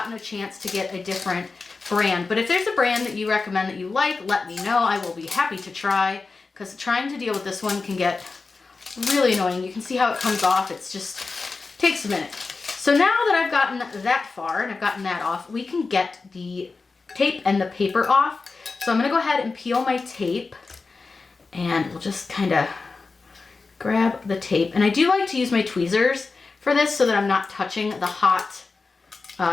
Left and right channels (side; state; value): right; quieter; 4.1 dB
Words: a chance to get a different brand. But if there's a brand that you recommend that you like, let me know. I will be happy to try, because trying to deal with this one can get really annoying. You can see how it comes off. It's just takes a minute. So now that I've gotten that far and I've gotten that off, we can get the tape and the paper off. So I'm going to go ahead and peel my tape, and we'll just kind of grab the tape. And I do like to use my tweezers for this so that I'm not touching the hot